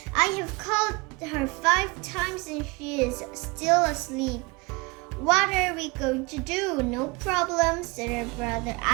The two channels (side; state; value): left; quieter; 26.8 dB